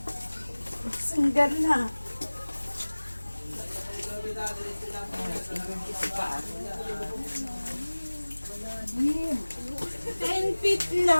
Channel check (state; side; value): inverted; both; correlation -1.00